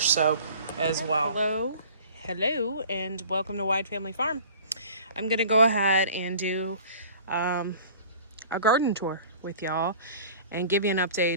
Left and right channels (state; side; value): inverted; both; correlation -0.45